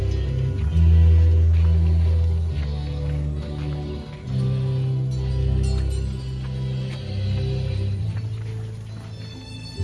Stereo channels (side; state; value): both; identical; correlation 1.00